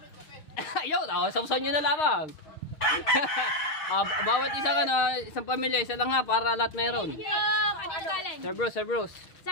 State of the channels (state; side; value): late; right; 6.5 ms